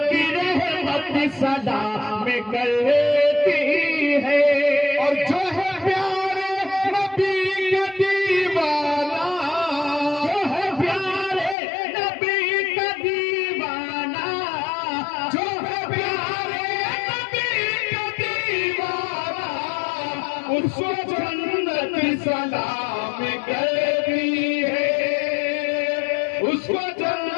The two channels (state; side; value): drops out; right; at 11.6 s